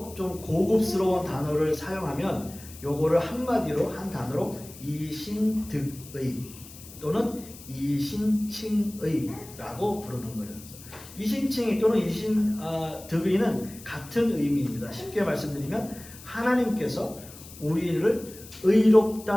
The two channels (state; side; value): noise; left; hiss, 18 dB below the sound